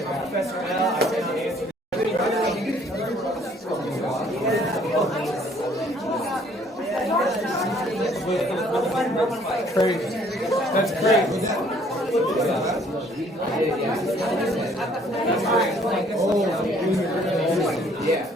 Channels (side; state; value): both; normal; correlation 0.60